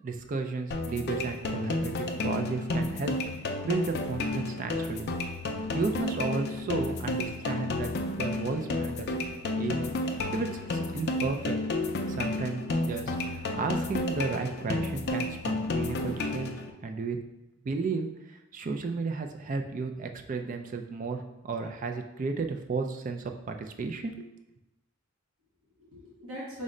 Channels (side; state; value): both; normal; correlation 0.48